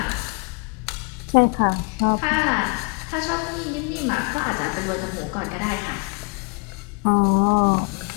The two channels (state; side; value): quieter; right; 33.5 dB